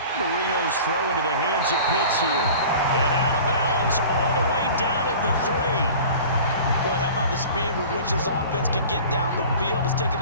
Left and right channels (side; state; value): both; inverted; correlation -0.41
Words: Marino's throw into the hands of Pitts here. And out of bounds all the way down at the 3. Boy, how about the speed with which this offense can get down the field? It's taken